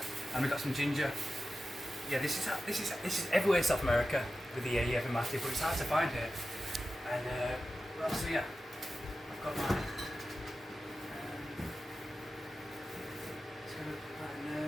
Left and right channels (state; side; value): normal; both; correlation 0.93